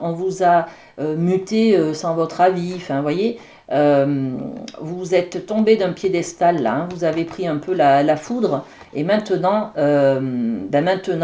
vous a muté sans votre avis, enfin, vous voyez, vous êtes tombé d'un piédestal là, hein, vous avez pris un peu la foudre, et maintenant,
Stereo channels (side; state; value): both; identical; correlation 1.00